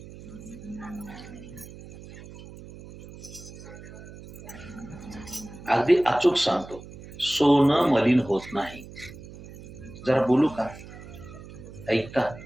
अगदी अचूक सांगतो, सोनं मलिन होत नाही. जरा बोलू का? ऐकता?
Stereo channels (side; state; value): right; noise; hum, 16 dB below the sound